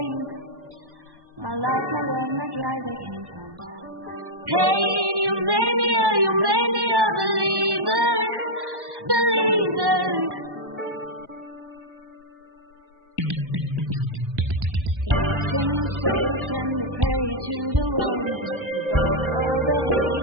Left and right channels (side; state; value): left; late; 1.1 ms